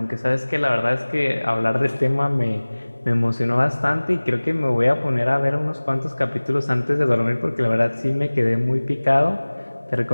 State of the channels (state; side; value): inverted; both; correlation -1.00